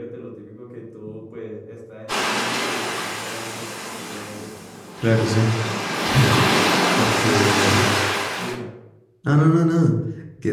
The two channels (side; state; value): both; identical; correlation 1.00